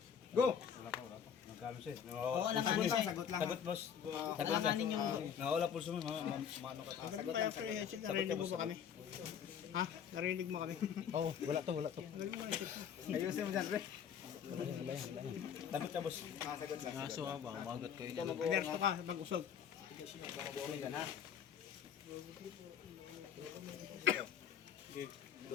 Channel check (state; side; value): quieter; right; 8.1 dB